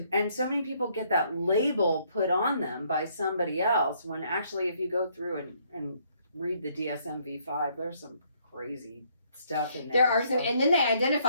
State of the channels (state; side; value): inverted; both; correlation -0.67